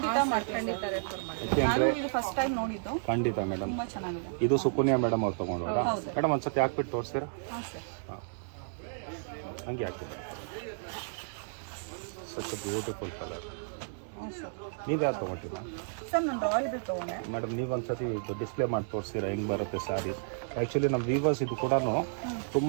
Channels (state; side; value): silent; left; digital silence